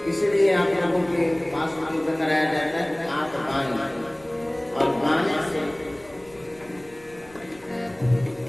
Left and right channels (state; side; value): noise; left; rumble, 26 dB below the sound